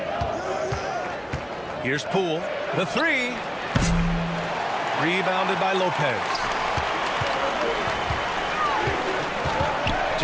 Here's Poole. The 3. Rebounded by Lopez.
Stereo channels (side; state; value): both; identical; correlation 1.00